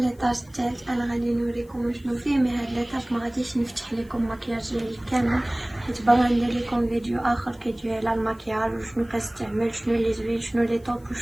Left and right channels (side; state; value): left; noise; hiss, 29 dB below the sound